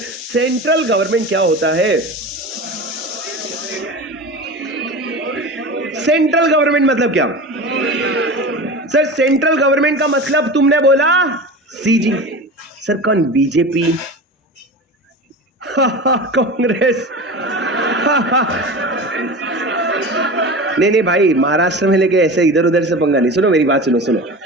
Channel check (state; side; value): normal; both; correlation 0.31